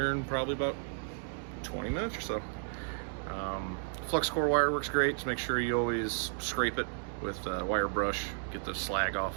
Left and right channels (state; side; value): silent; left; digital silence